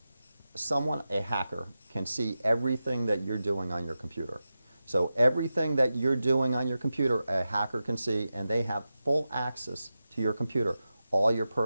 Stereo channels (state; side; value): inverted; both; correlation -0.92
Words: someone, a hacker, can see everything that you're doing on your computer. So everything that you're doing on your computer, a hacker can see, and they have full access to your computer, all your